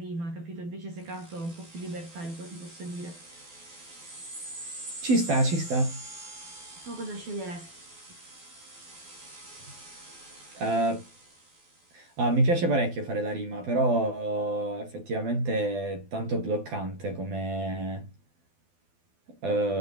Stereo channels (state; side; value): late; left; 12 ms